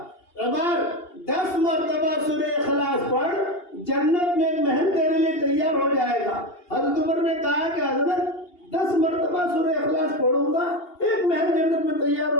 عمر 10 مرتبہ سورہ اخلاص پڑھ, جنت میں ایک محل تیرے لیے تیار ہو جائے گا. حضرت عمر نے کہا کہ حضرت 10 مرتبہ سورہ اخلاص پڑھوں گا, ایک محل جنت میں تیار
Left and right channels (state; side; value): late; right; 2.8 ms